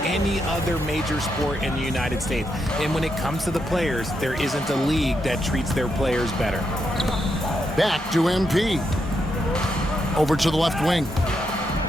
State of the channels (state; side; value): normal; both; correlation 0.82